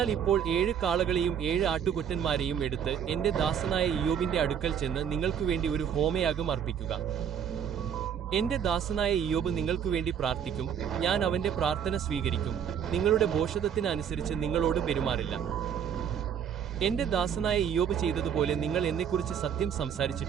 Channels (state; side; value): quieter; left; 8.3 dB